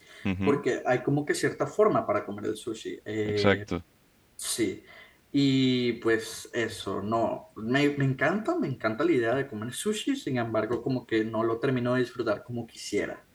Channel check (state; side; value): identical; both; correlation 1.00